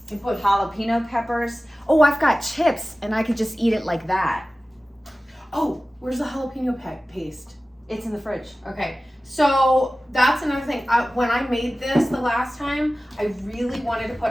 You put jalapeno peppers. Oh, I've got chips, and I could just eat it like that. Oh, where's the jalapeno paste? It's in the fridge. Okay, so that's another thing. When I made this the last time, I really wanted to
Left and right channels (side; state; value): both; normal; correlation 0.96